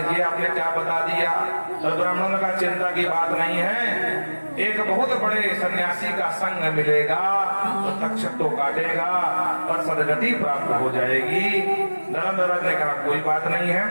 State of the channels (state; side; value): inverted; both; correlation -1.00